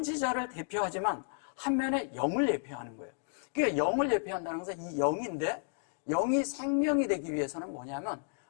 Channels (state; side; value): silent; right; 56 dB below the other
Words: 대표하지만 한면에 영을 예표하는 거예요. 그러니까 영을 예표한다는 것은 이 영인데 영이 생명이 되기 위해서는 뭐냐면